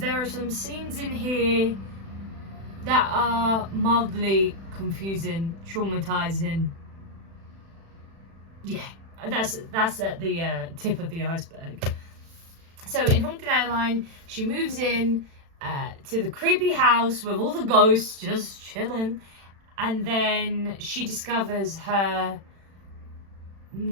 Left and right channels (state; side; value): late; left; 36 ms